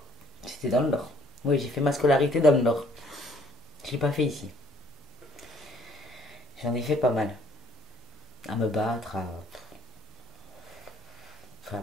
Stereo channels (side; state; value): both; normal; correlation 0.60